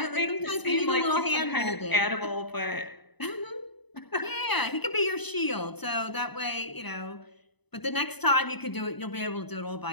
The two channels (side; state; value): right; late; 0.99 ms